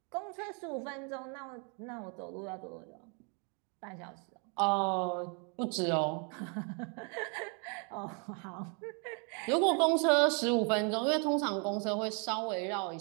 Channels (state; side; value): quieter; left; 37.2 dB